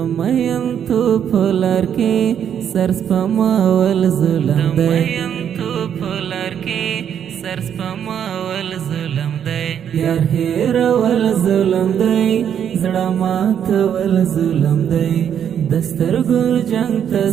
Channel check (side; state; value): left; quieter; 8.8 dB